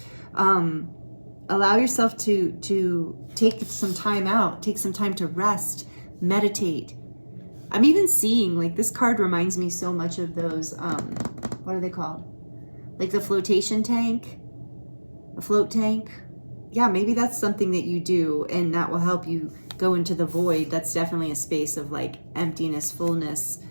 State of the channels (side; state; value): both; inverted; correlation -1.00